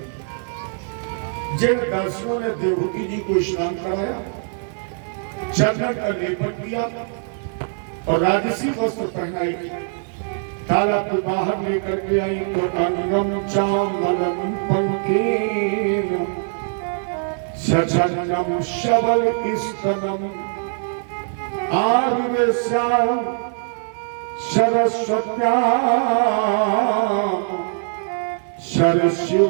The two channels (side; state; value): left; silent; 59 dB below the other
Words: जिन दासियों ने देवहूति जी को स्नान कराया, चंदन का लेपन किया और राजसी वस्त्र पहनाई, तालाब के बाहर लेकर के आई, तो अंगम चामलम पंकेन सचनम शबल स्तनम आर्वेश्याम सरस्वत्या सरस्यु